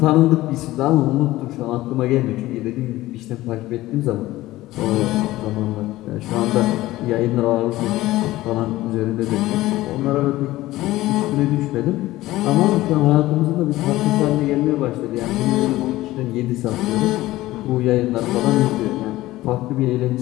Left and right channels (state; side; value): quieter; right; 17.0 dB